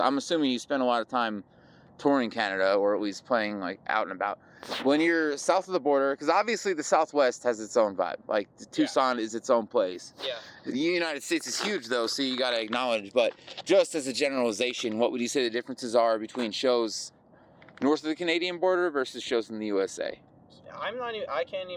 assuming you spend a lot of time touring Canada, or at least playing like out and about. When you're south of the border, because obviously the Southwest has its own vibe. Like Tucson is its own place. Yeah. The United States is huge though, so you got to acknowledge. But just as a generalization, what would you say the differences are between shows north of the Canadian border versus shows in the USA? I can't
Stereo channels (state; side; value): identical; both; correlation 1.00